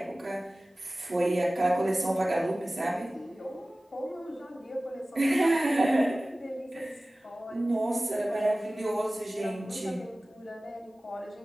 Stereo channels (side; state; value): both; normal; correlation 0.97